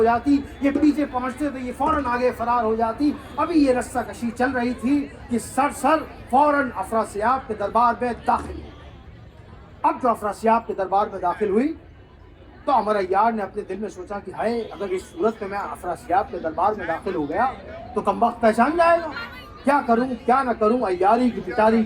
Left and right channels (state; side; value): identical; both; correlation 1.00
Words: جاتی، یہ پیچھے پہنچتے تو یہ فوراً آگے فرار ہو جاتی۔ ابھی یہ رسہ کشی چل رہی تھی کہ سرسر فوراً افراسیاب کے دربار میں داخل ہوئی۔ اب جو افراسیاب کے دربار میں داخل ہوئی تو عمر عیار نے اپنے دل میں سوچا کہ ہائے، اگر اس صورت میں افراسیاب کے دربار میں داخل ہو گیا تو کمبخت پہچان جائے گا، کیا کروں کیا نہ کروں۔ عیاری کی پٹاری